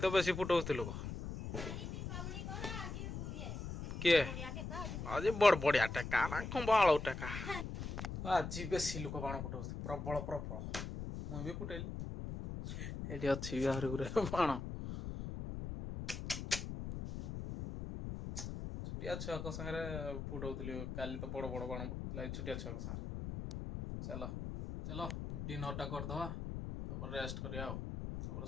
बेसी फुटौलु किए आज बड़ बढ़िया टेका ना खंबाल टेका आज बेसी लोक बाण फुटौ प्रबल प्रबल मुझे भी फुटेली ये अच्छी बाहर गुरे बाण छुटिया छुआ सागे फुटौली काली तो बड़ बड़ बाण फुटला छुटिया छुआ सागे चलो चलो डिनर टा करदवा रेस्ट करिया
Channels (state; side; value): noise; left; rumble, 6 dB below the sound